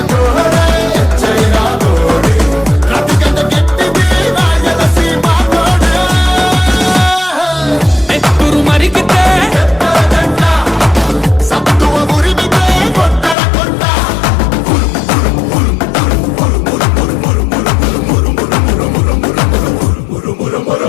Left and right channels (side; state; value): right; drops out; at 13.4 s